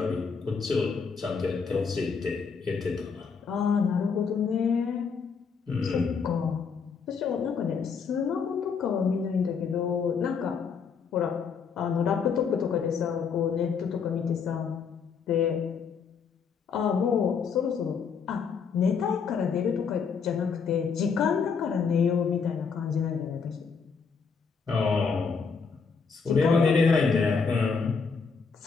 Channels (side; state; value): right; quieter; 5.7 dB